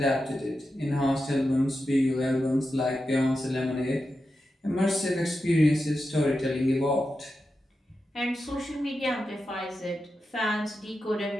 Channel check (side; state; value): both; normal; correlation 0.90